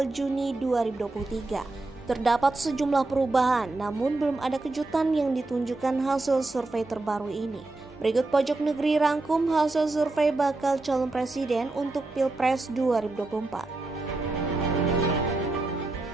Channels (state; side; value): quieter; left; 3.1 dB